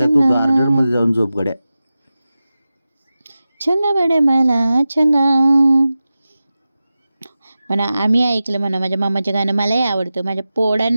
तू चंगा. गार्डन मध्ये जाऊन झोप गड्या छंगा बडे मला छंगा म्हणा आम्ही ऐकलं म्हणा माझ्या मामाचं गाणं मलाही आवडतं माझ्या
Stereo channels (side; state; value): both; inverted; correlation -0.94